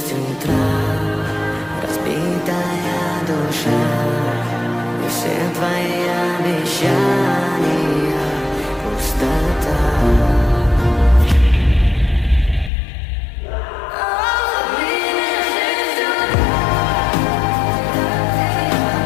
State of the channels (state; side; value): drops out; right; at 12.7 s